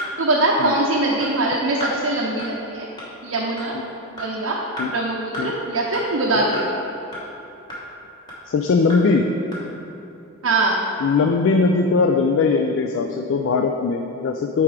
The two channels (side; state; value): both; normal; correlation 0.13